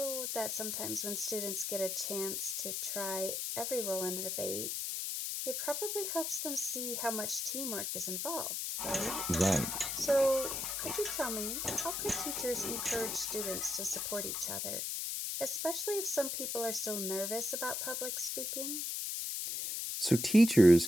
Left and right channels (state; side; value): noise; left; hiss, 2 dB below the sound